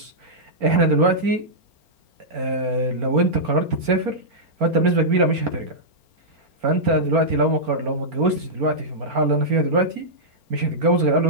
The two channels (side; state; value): left; late; 4.4 ms